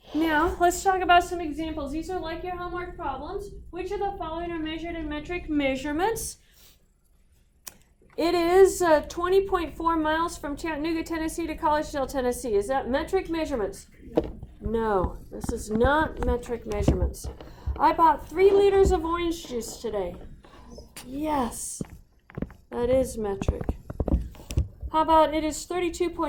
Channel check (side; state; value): both; identical; correlation 1.00